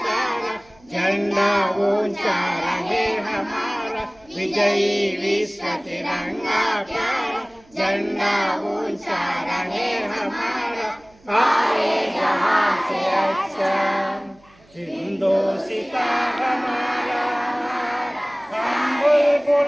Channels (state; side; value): noise; right; hum, 29 dB below the sound